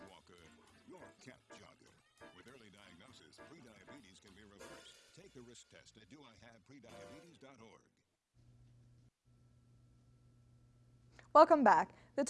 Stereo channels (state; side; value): identical; both; correlation 1.00